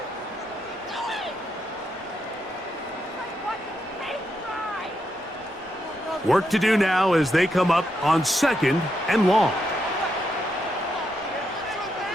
Work to do now as they come up on 2nd and long.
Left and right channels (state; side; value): normal; both; correlation 0.81